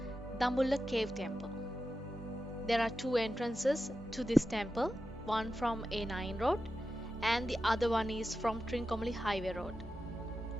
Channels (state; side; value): normal; both; correlation 0.91